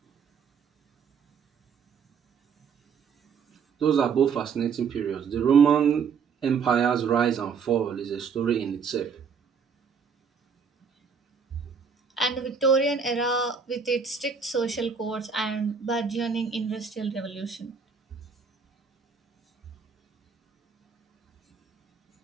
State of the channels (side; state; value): left; quieter; 6.1 dB